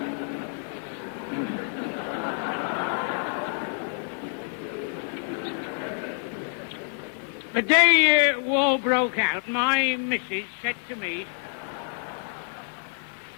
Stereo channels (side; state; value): right; silent; 60 dB below the other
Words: The day war broke out, my missus said to me,